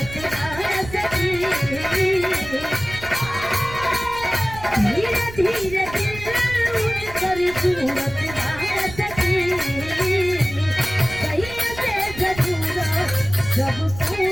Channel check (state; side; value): noise; right; rumble, 14 dB below the sound